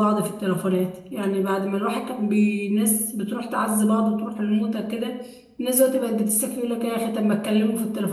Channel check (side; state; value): both; identical; correlation 1.00